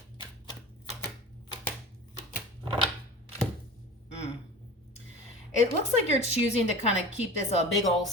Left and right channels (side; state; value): both; normal; correlation 0.36